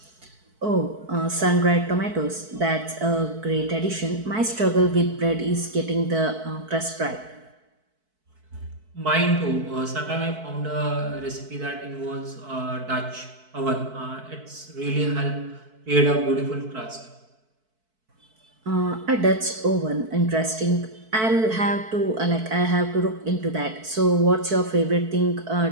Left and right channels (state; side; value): late; left; 4.6 ms